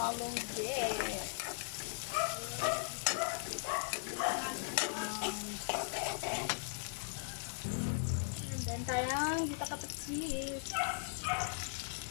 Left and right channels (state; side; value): silent; right; digital silence